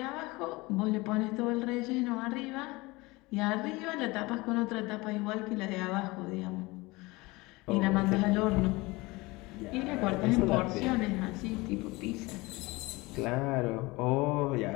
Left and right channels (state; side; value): quieter; right; 22.8 dB